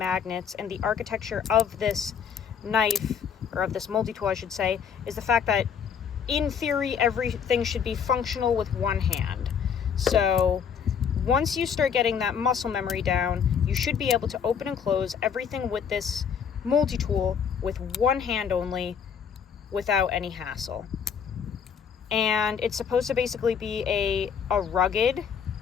and the architecture of this knife, or of this multi-tool I should say, is the fact that in theory everything should be functional with one hand. So once you start getting that muscle memory down, you should be able to open and close everything with this multi-tool with one hand only without any hassle. And it's supposed to basically be a rugged,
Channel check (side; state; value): right; quieter; 7.2 dB